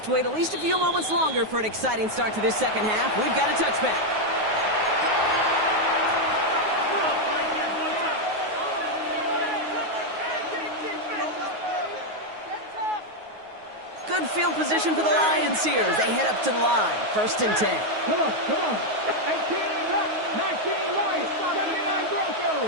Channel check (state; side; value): late; left; 9.4 ms